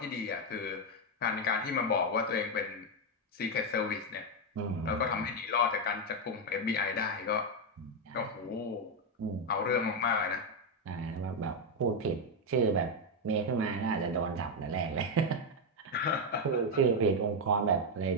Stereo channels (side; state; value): both; normal; correlation 0.04